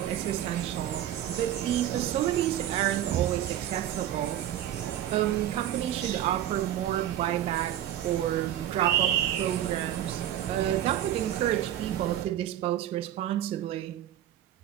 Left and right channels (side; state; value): left; quieter; 11.8 dB